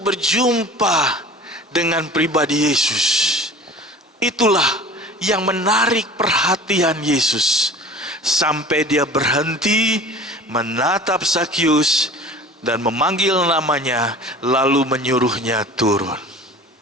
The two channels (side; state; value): both; normal; correlation 0.41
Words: berjumpa dengan pribadi Yesus, itulah yang menarik perhatian Yesus. Sampai dia berhenti menatap Sakyus dan memanggil namanya, lalu menyuruhnya turun.